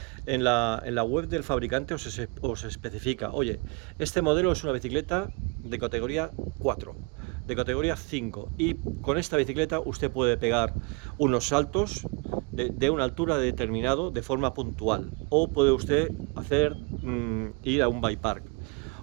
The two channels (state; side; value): quieter; left; 30.9 dB